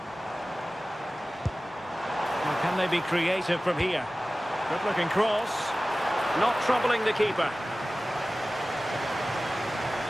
Well, can they be creative from here? Good-looking cross. Not troubling the keeper.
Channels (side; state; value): both; normal; correlation 0.97